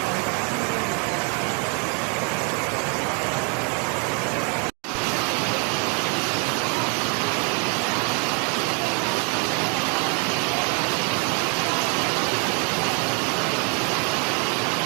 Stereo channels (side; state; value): left; quieter; 35.0 dB